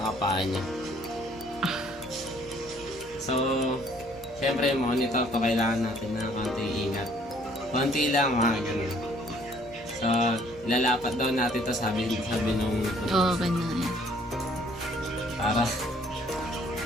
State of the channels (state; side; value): normal; both; correlation 0.60